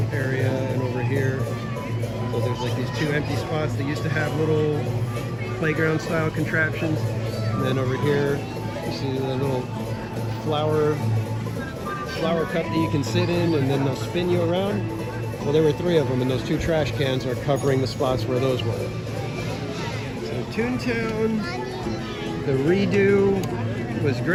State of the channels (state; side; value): identical; both; correlation 1.00